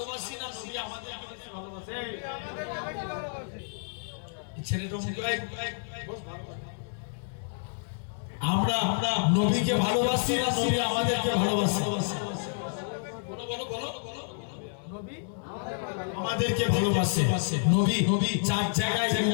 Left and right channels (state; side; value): silent; right; digital silence